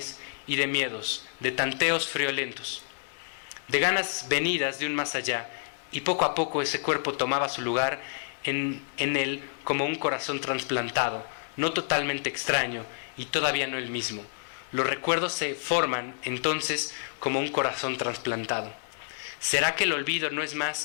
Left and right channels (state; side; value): silent; right; 59 dB below the other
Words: y de miedos, de tanteos friolentos, de ganas venidas de un más allá, y poco a poco ese cuerpo tomaba su lugar en él como un corazón trasplantado, no totalmente extraño y todavía no el mismo. Los recuerdos se forman entonces como un corazón trasplantado. ¿Será que el olvido no es